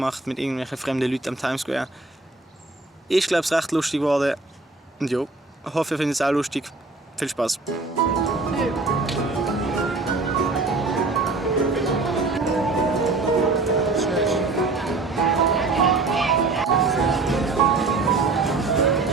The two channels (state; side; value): quieter; left; 3.6 dB